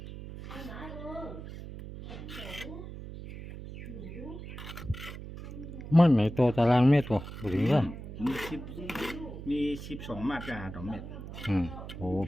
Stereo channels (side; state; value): right; noise; hum, 11 dB below the sound